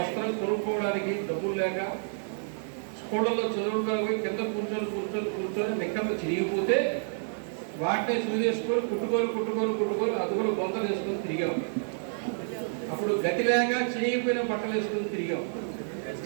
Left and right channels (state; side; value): silent; left; digital silence